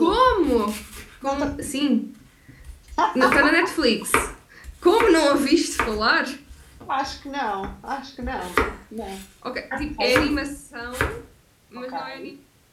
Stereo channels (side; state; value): both; identical; correlation 1.00